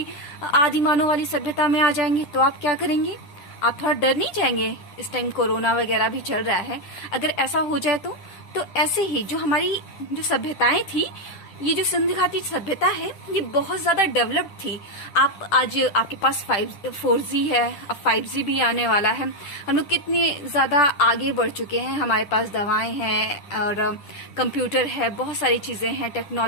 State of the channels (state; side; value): late; right; 9.9 ms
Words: आदिमानव वाली सभ्यता में आ जाएंगे, तो आप क्या करेंगे? आप थोड़ा डर नहीं जाएंगे? इस टाइम कोरोना वगैरह भी चल रहा है, अगर ऐसा हो जाए तो ऐसे ही जो हमारी जो सभ्यताएं थी, ये जो सिंधु घाटी सभ्यता है ये बहुत ज्यादा डेवलप्ड थी। आप आज आपके पास 4G है, अब 5G भी आने वाला है। हम लोग कितने ज्यादा आगे बढ़ चुके हैं। हमारे पास दवाएं हैं और कंप्यूटर है, बहुत सारी चीजें हैं,